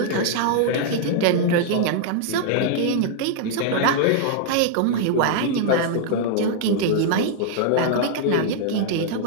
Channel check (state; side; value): different; both; correlation -0.01